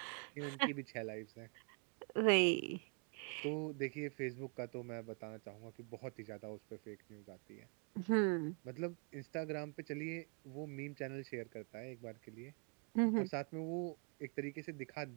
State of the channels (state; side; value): quieter; left; 36.6 dB